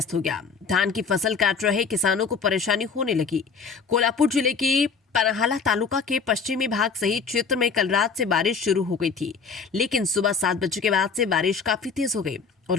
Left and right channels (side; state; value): right; quieter; 5.3 dB